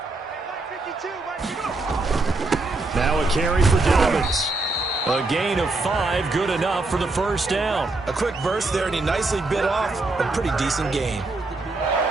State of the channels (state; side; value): quieter; left; 3.2 dB